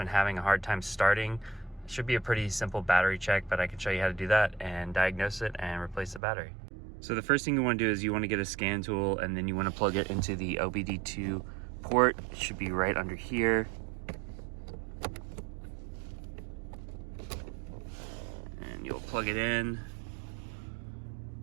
having a hard time starting. It should be a pretty simple battery check, but I can show you how to do that and diagnose it and replace the battery. So the first thing you want to do is you want to get a scan tool, and then you want to plug it into the OBD2 port. It should be right under here. You'll plug it in,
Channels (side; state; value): left; drops out; at 6.2 s